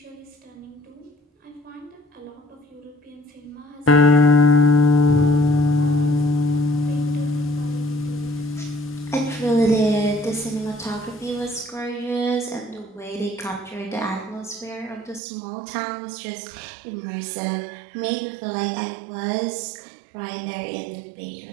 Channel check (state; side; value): drops out; left; at 15.2 s